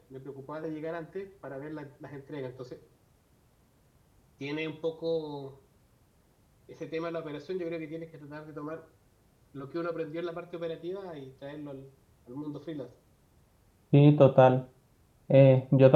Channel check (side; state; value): both; identical; correlation 1.00